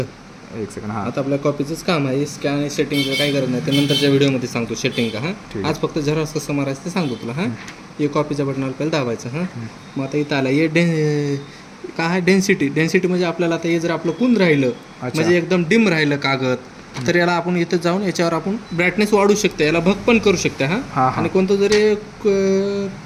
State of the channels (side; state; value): both; identical; correlation 1.00